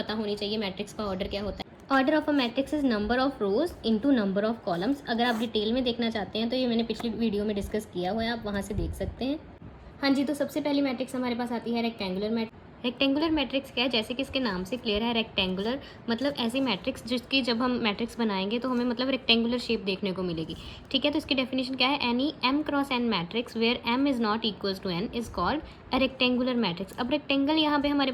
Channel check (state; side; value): identical; both; correlation 1.00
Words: होनी चाहिए, मैट्रिक्स का ऑर्डर क्या होता है। Order of a matrix is number of rose into number of columns. अगर आप डिटेल में देखना चाहते हैं तो ये मैंने पिछली वीडियो में डिस्कस किया हुआ है, आप वहाँ से देख सकते हैं। हाँ जी, तो सबसे पहली मैट्रिक्स हमारे पास आती है रेक्टेंगुलर मैट्रिक्स। रेक्टेंगुलर मैट्रिक्स क्या है, जैसे कि इसके नाम से क्लियर है, रेक्टेंगुलर मतलब ऐसी मैट्रिक्स जिसकी जब हम मैट्रिक्स बनाएंगे तो हमें मतलब रेक्टेंगुलर शेप देखने को मिलेगी। ठीक है, तो इसकी डेफिनेशन क्या है, any m cross n matrix where m is not equals to n is called a rectangular matrix. अब रेक्टेंगल यहाँ पे हमारे